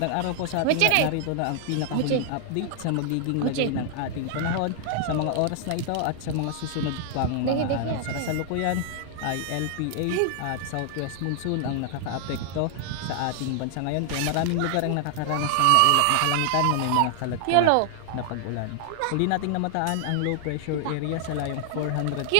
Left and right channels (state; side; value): different; both; correlation 0.00